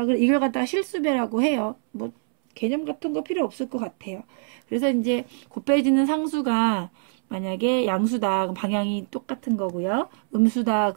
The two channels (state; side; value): silent; left; 62 dB below the other